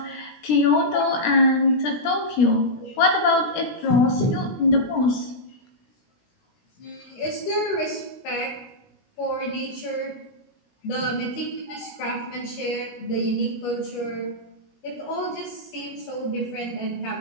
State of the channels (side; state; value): right; late; 17 ms